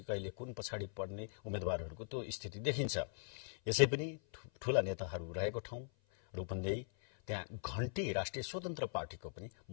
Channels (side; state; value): right; silent; 51 dB below the other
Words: कुन पछाडि पर्ने उम्मेद्वारहरूको त्यो स्थिति देखिन्छ। यसै पनि ठूला नेताहरू रहेको ठाउँ रूपन्देही, त्यहाँ घण्टी राष्ट्रिय स्वतन्त्र पार्टीको पनि